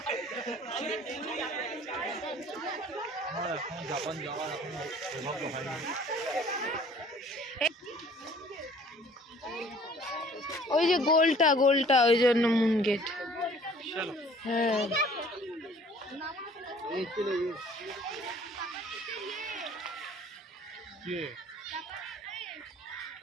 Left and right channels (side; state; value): both; normal; correlation 0.53